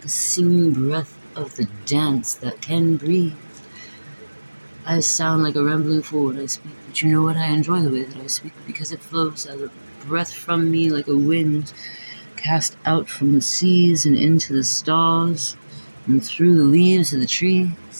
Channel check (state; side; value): inverted; both; correlation -1.00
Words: a singing breath of the dance that can breathe. I sound like a rambling fool when I speak, but you know what? I enjoy the way that I speak because it flows as a breath from me like a wind cast out from the seas and into the stars and through the leaves of the